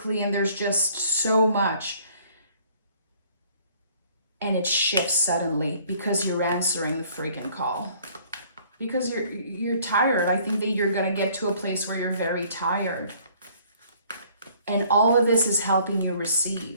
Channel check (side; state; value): both; inverted; correlation -0.58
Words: and there's just so much. And it shifts suddenly because you're answering the freaking call. because you're tired. I think that you're going to get to a place where you're very tired. And all of this is helping you